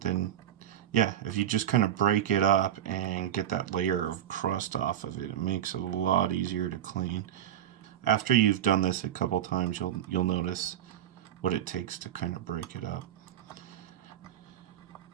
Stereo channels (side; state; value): left; quieter; 10.7 dB